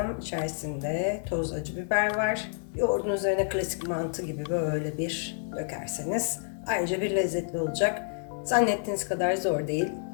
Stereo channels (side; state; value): right; silent; digital silence